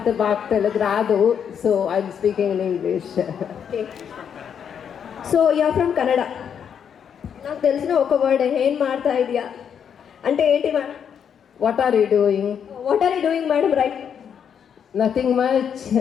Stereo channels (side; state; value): right; quieter; 7.9 dB